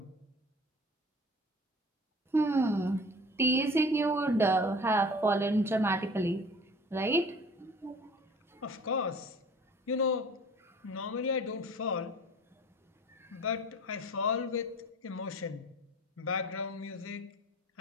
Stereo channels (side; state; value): both; normal; correlation 0.45